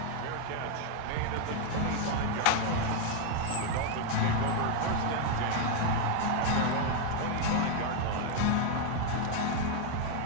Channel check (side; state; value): both; different; correlation 0.00